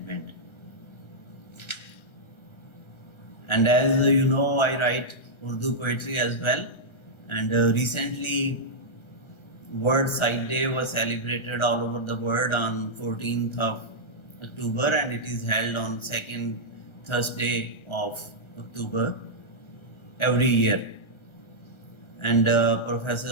And as you know, I write Urdu poetry as well. And recently, World Sight Day was celebrated all over the world on 14th of October, and it is held on second Thursday of October every year. And Professor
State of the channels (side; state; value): right; late; 1.3 ms